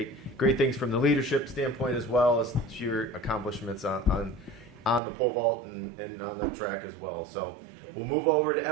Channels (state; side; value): drops out; left; at 5.0 s